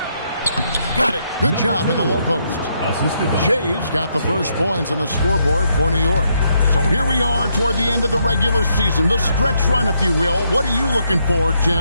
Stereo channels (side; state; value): both; inverted; correlation -0.76